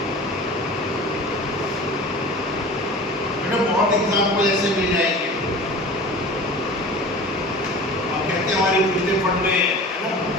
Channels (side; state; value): both; normal; correlation 0.38